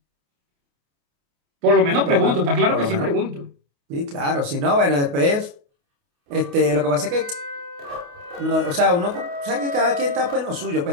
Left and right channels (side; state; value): left; late; 28 ms